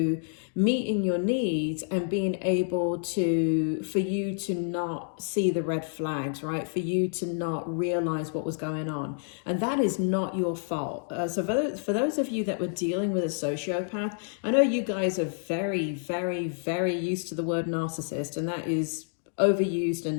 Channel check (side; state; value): right; silent; digital silence